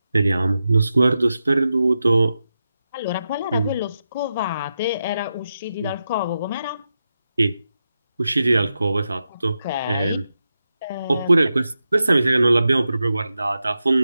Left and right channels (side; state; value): both; inverted; correlation -0.89